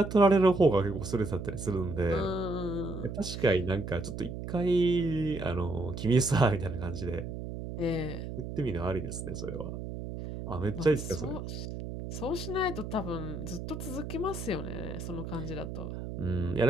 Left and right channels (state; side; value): noise; right; hum, 7 dB below the sound